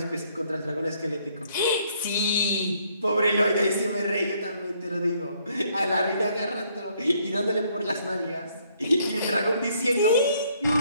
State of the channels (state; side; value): inverted; both; correlation -0.68